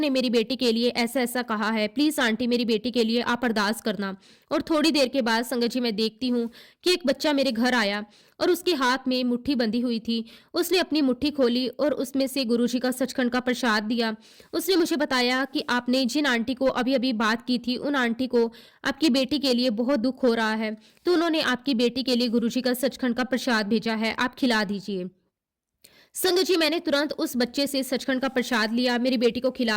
मेरी बेटी के लिए ऐसा ऐसा कहा है, प्लीज आंटी मेरी बेटी के लिए आप अरदास करना। और थोड़ी देर के बाद संगत जी मैं देखती हूँ कि एक बच्चा मेरे घर आया और उसके हाथ में मुट्ठी बंधी हुई थी। उसने अपनी मुट्ठी खोली और उसमें से गुरुजी का सचखंड का प्रसाद दिया। उसने मुझे बताया कि आपने जिन आंटी को अभी अभी बात की थी उन आंटी को आपकी बेटी के लिए बहुत दुख हो रहा है, तो उन्होंने आपकी बेटी के लिए गुरुजी का सचखंड का प्रसाद भेजा है, आप खिला दीजिए। संगत जी मैंने तुरंत उस बच्चे से सचखंड का प्रसाद लिया, मेरी बेटी को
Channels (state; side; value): identical; both; correlation 1.00